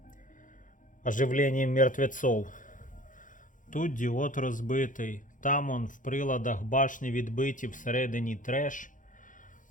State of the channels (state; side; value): late; right; 0.38 ms